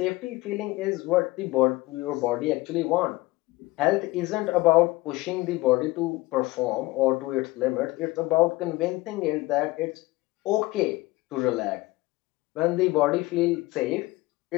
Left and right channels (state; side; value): quieter; right; 20.6 dB